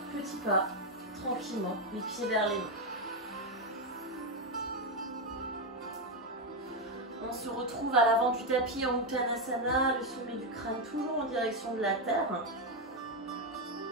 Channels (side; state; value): both; normal; correlation 0.06